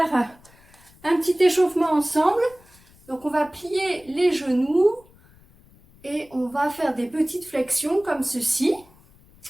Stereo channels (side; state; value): left; noise; rumble, 28 dB below the sound